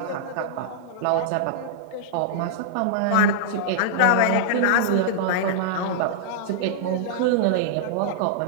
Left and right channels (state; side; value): different; both; correlation -0.02